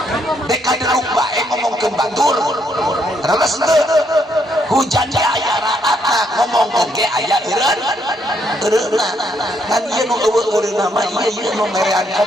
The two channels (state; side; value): normal; both; correlation 0.73